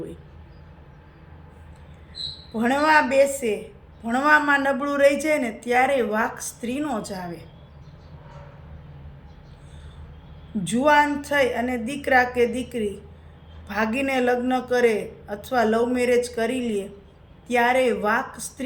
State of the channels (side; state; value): both; identical; correlation 1.00